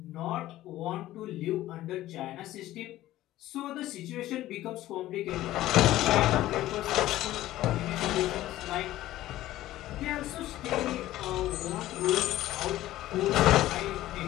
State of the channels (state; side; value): quieter; right; 15.0 dB